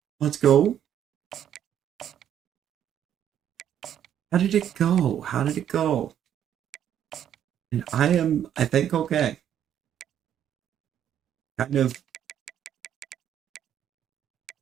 Let's go. How did it go? How did it go? And I think, okay. Kind of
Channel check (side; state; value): left; quieter; 10.0 dB